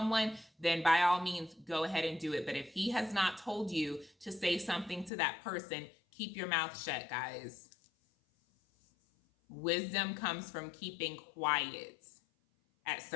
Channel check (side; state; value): right; drops out; at 5.1 s